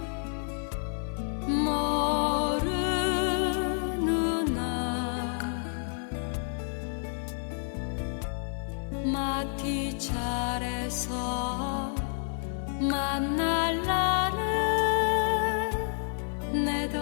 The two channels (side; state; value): right; silent; digital silence